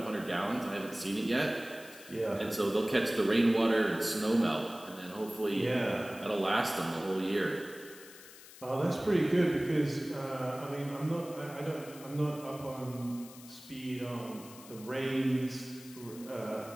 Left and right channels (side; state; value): left; noise; hiss, 18 dB below the sound